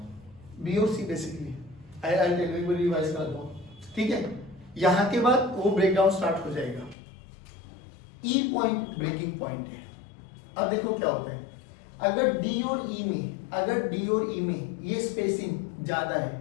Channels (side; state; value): right; drops out; at 7.0 s